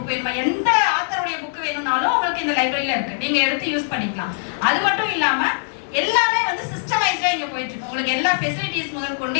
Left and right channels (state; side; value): silent; right; digital silence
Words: வேணுமா, எந்த ஆத்தருடைய புக் வேணும்னாலும் உங்களுக்கு இந்த லைப்ரரியில இருக்கு. நீங்க எடுத்து யூஸ் பண்ணிக்கலாம். அது மட்டும் இல்லாம எல்லாமே வந்து சிஸ்டமைஸ்டா இங்க போயிட்டு இருக்கு. உங்களுக்கு எல்லா ஃபெசிலிட்டிஸ் முதல் கொண்டு